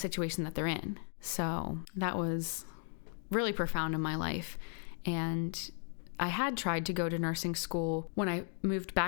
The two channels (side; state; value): right; silent; 54 dB below the other